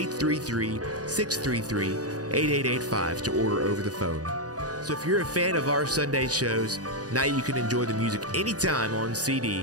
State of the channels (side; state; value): left; late; 0.68 ms